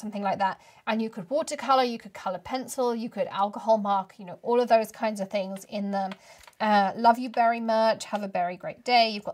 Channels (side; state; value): both; identical; correlation 1.00